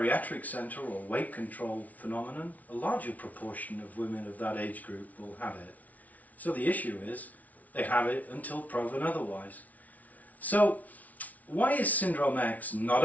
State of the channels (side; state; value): right; late; 0.073 ms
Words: center or weight control phenomenon, a larger proportion of women of that age group will have it. So the issue is they have it until proven otherwise. So why is Syndrome X not